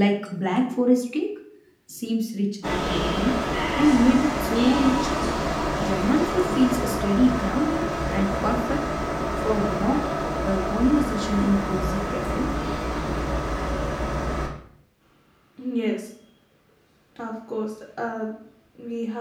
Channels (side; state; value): both; identical; correlation 1.00